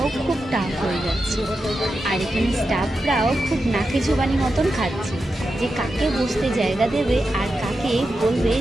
খুব টাফ হয়ে যাচ্ছে। আর এখানে স্টাফরাও খুব নাকে জোবানি মতন খাচ্ছে যে কাকে বসতে জায়গা দেবে আর কাকে বলবে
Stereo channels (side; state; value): both; normal; correlation 0.89